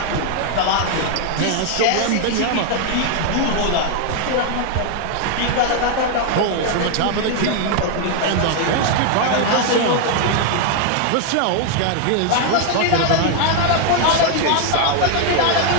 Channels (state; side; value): different; both; correlation 0.00